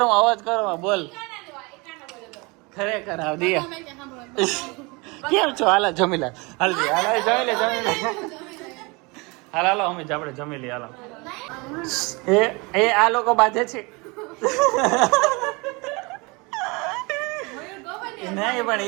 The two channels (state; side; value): quieter; left; 27.2 dB